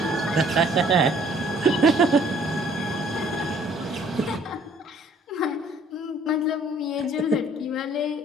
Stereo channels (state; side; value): normal; both; correlation 0.59